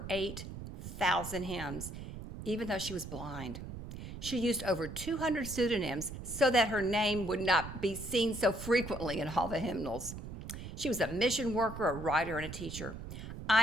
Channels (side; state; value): right; noise; rumble, 10 dB below the sound